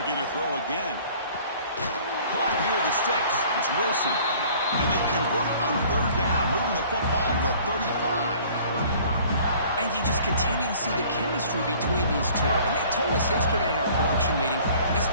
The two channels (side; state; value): both; inverted; correlation -0.52